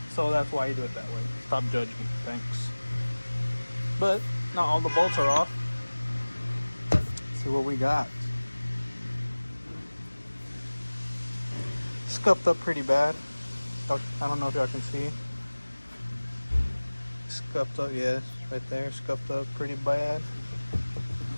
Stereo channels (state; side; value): inverted; both; correlation -1.00